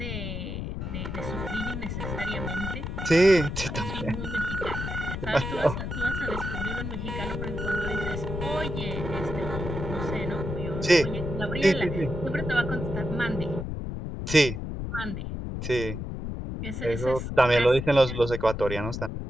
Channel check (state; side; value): noise; left; rumble, 5 dB below the sound